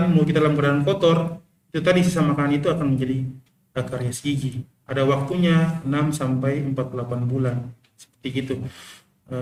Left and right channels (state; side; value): identical; both; correlation 1.00